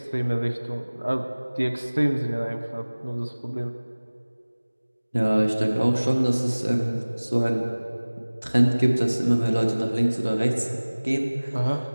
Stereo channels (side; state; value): both; inverted; correlation -1.00